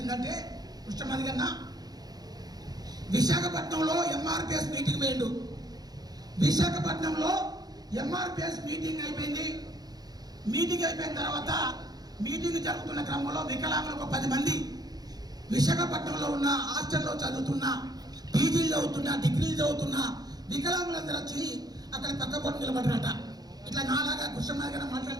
కృష్ణమాది గారు విశాఖపట్నంలో ఎంఆర్పిఎస్ మీటింగ్ పోయిండు. విశాఖపట్నంలో ఎంఆర్పిఎస్ మీటింగ్ అయిపోయింది. మీటింగ్ అయిపోయిన తర్వాత మీటింగ్ జరుగుతున్న క్రమంలో వికలాంగులకు 10 మంది విశాఖపట్నంలో ఉన్న హాస్టల్లో చదువుతున్న, పీజీలు చదువుతున్న, డిగ్రీలు చదువుతున్న వికలాంగులందరూ వచ్చి అక్కడ పక్క పొంటి నిలబడ్డారట. ఇట్లా నాలాగా కృష్ణమాది గారు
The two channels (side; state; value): left; late; 0.19 ms